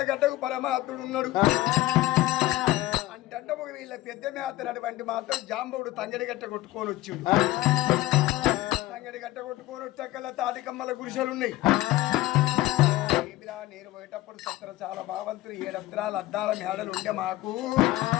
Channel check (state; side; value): quieter; right; 17.1 dB